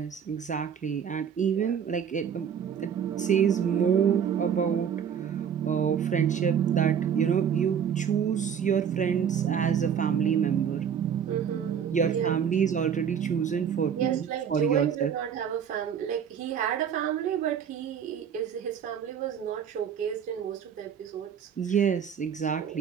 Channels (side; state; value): left; quieter; 8.0 dB